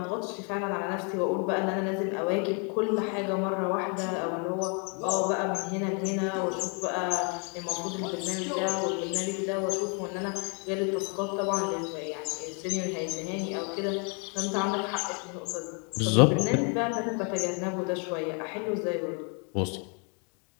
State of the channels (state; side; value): quieter; right; 36.9 dB